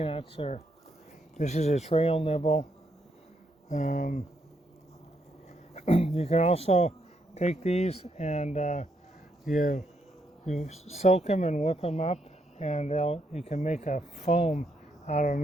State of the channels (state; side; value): normal; both; correlation 0.77